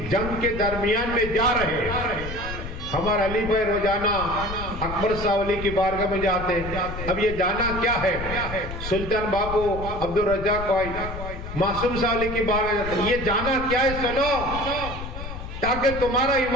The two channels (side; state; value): left; noise; rumble, 8 dB below the sound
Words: جنگ کے درمیان میں جا رہے ہیں. ہمارا علی بھائی روزانہ اکبر صاحب علی کی بارگاہ میں جاتے ہیں. اب یہ جانا کیا ہے؟ سلطان باپو عبد الرزاق بھائی معصوم صاحب علی کی بارگاہ جاتے ہیں. یہ جانا کیا ہے؟ سنو، تاکہ تمہارا